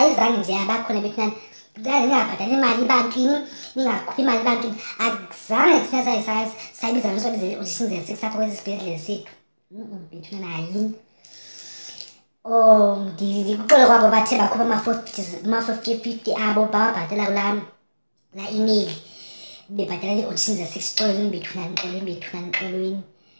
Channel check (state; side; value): inverted; both; correlation -1.00